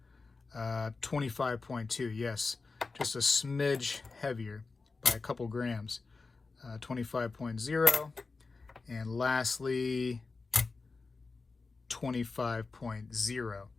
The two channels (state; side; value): quieter; right; 4.1 dB